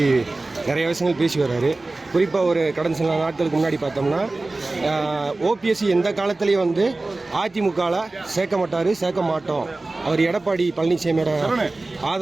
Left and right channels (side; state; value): left; quieter; 3.1 dB